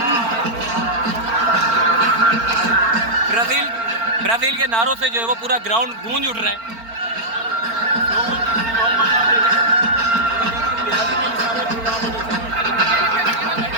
ब्राज़ील के नारों से जो है वो पूरा ग्राउंड गूंज उठ रहा है।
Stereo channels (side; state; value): left; late; 4.4 ms